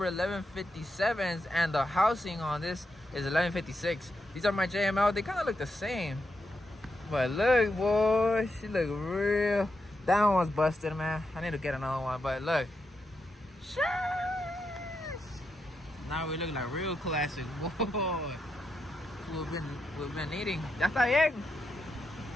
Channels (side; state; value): both; normal; correlation 0.84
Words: 1157s, and the housing on this is 1156. These are my JML. They kind of look the same. But look, boy, she look real. That one's busted, man. I need to get another one. But look. Sheesh. Now we look like real classic. Boy. We've been eating. Ya está bien.